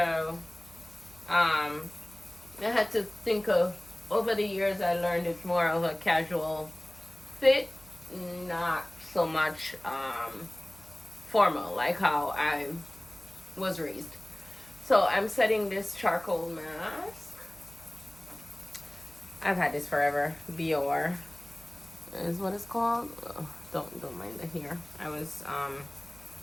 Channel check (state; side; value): noise; right; hum, 23 dB below the sound